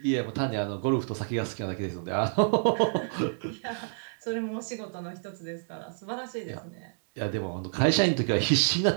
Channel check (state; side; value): silent; left; digital silence